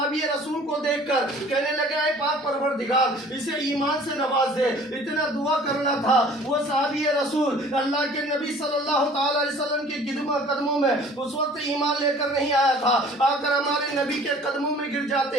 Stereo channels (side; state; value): both; normal; correlation 0.50